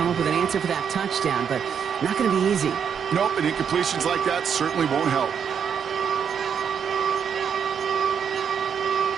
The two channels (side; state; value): left; quieter; 7.5 dB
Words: up with an answer for that touchdown, but not going to be easy. Nope, and incompletions like that certainly won't help.